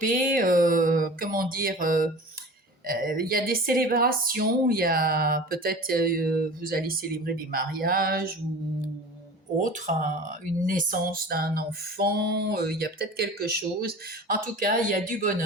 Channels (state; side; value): normal; both; correlation 0.38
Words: comment dire, il y a des célébrations, il y a peut-être, vous allez célébrer des mariages ou autre, hein, une naissance d'un enfant, il y a peut-être quelque chose. En tout cas, il y a du